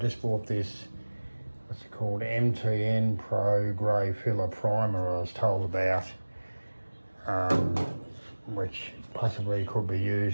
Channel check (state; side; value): inverted; both; correlation -1.00